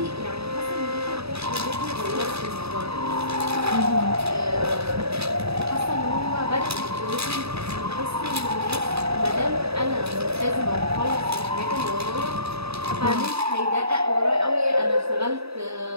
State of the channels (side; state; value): left; late; 0.79 ms